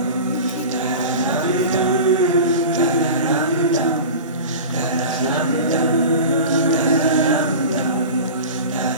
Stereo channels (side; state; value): both; inverted; correlation -0.33